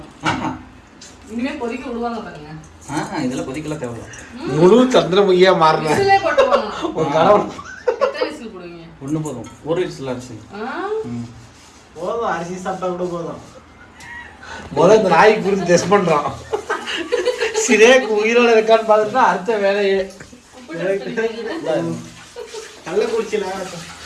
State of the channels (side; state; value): both; identical; correlation 1.00